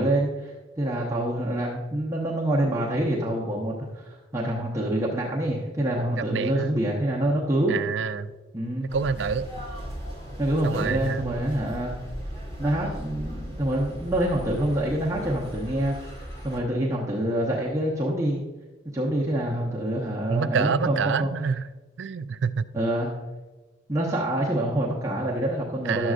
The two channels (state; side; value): normal; both; correlation 0.63